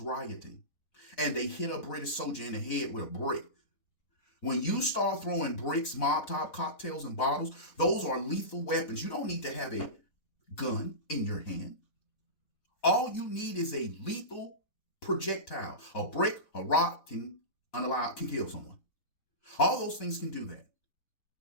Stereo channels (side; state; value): right; late; 4.0 ms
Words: rioting. And they hit a British soldier in the head with a brick. When you start throwing bricks, Molotov cocktails, and bottles, those are lethal weapons. You don't need to have a gun in your hand. All you need is a lethal projectile. A brick, a rock can kill someone. All those things can do that.